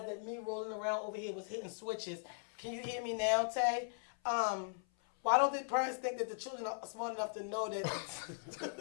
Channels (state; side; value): silent; right; 52 dB below the other